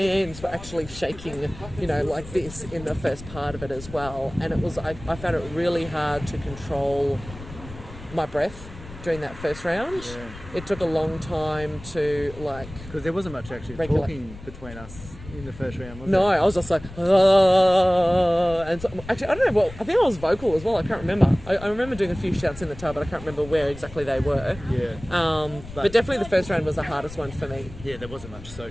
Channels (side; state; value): left; noise; rumble, 15 dB below the sound